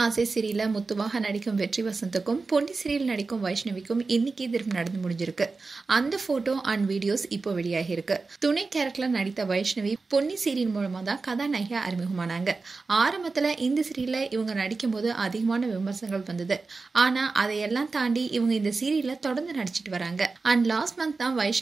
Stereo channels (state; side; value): quieter; left; 4.0 dB